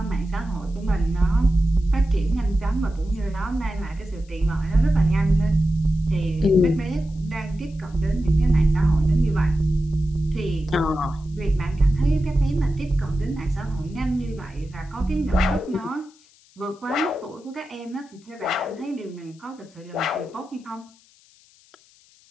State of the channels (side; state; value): left; noise; hiss, 29 dB below the sound